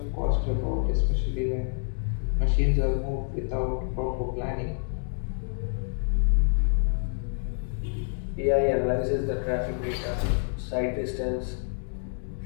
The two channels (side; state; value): right; silent; 60 dB below the other